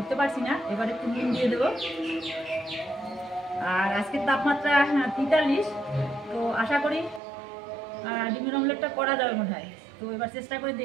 পারছি না। এবার একটু নুন দিয়ে দেবো। আর আজকের তাপমাত্রা 43, তো আশা করি ডিমের অমলেটটা করা যাবে মনে হয়। তো এবার চেষ্টা করে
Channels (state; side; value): drops out; left; at 7.2 s